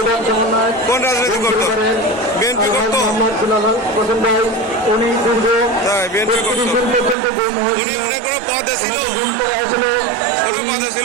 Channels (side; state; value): left; drops out; at 7.2 s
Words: কোন রাজনীতি করতো? বিএনপি করতো? তাই বিএনপি করতো। উনি কোনো পদে ছিল? কোনো পদে